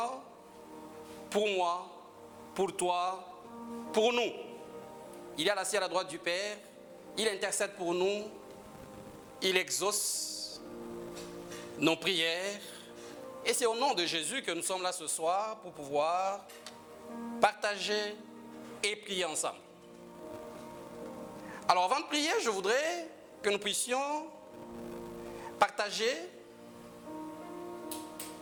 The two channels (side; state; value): both; identical; correlation 1.00